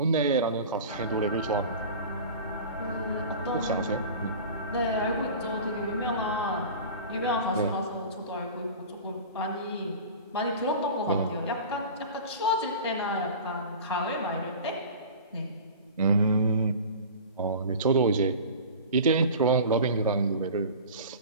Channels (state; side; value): inverted; both; correlation -0.37